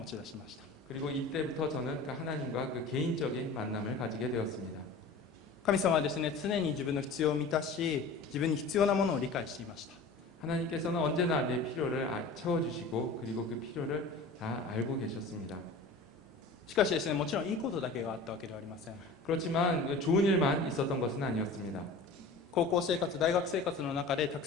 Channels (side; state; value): right; quieter; 3.6 dB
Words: ち出しました。 그리고 이때부터 저는 그 하나님과 그 개인적인 만남을 가지게 되었습니다. 神様はですね、常に自分の必要を満たし、自分に必要なものを理解していました。 하나님께서는 언제나 내 필요를 채워주시고 그리고 그 필요를 다 알고 계셨습니다. しかしですね、もちろんいいことだけがあったわけではありません。 그렇지만 좋은 일만 있었던 것은 아니었습니다. 高校生活、大学生活の中でたく